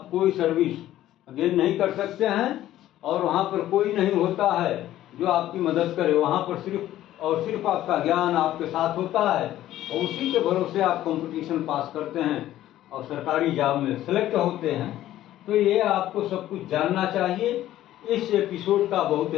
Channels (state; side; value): quieter; right; 13.5 dB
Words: कोई सर्विस गेन नहीं कर सकते हैं और वहाँ पर कोई नहीं होता है जो आपकी मदद करे। वहाँ पर सिर्फ और सिर्फ आपका ज्ञान आपके साथ होता है और उसी के भरोसे आप कंपटीशन पास करते हैं और सरकारी जॉब में सेलेक्ट होते हैं। तो ये आपको सब कुछ जानना चाहिए। इस एपिसोड का बहुत